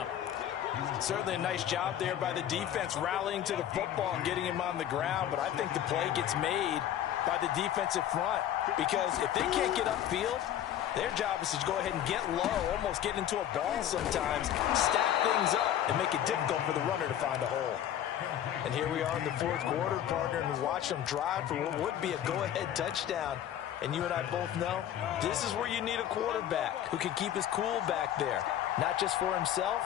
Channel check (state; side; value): quieter; right; 10.9 dB